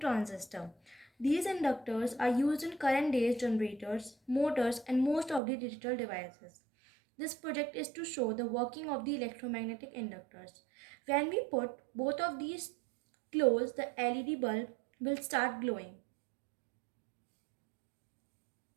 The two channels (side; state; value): left; drops out; at 5.4 s